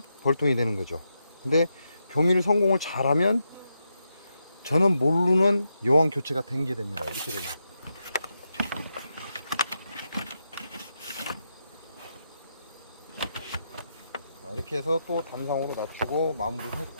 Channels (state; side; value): inverted; both; correlation -0.84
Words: 벌통이 되는 거죠. 근데 교미를 성공을 잘하면 저는 모르는 여왕 교체가 된 게 됩니다. 이렇게 되면. 이렇게 해서 또 단상으로 낮추고 마무리를